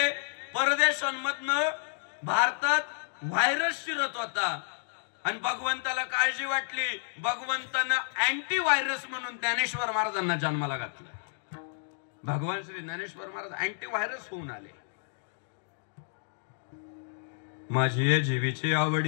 परदेशांमधनं भारतात व्हायरस शिरत होता आणि भगवंताला काळजी वाटली, भगवंतानं अँटी व्हायरस म्हणून ज्ञानेश्वर महाराजांना जन्माला घातलं. भगवान श्री ज्ञानेश्वर महाराज अँटी व्हायरस होऊन आले. माझी ये जीवीची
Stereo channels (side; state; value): right; silent; digital silence